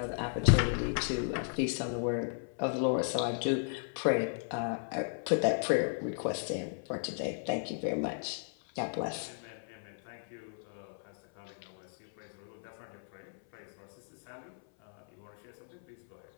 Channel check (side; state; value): right; silent; 54 dB below the other